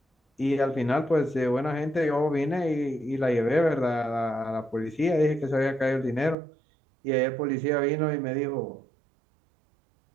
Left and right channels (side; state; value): left; drops out; at 6.4 s